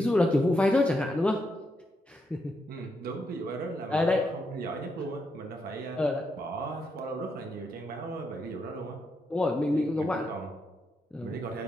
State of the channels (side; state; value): both; normal; correlation 0.81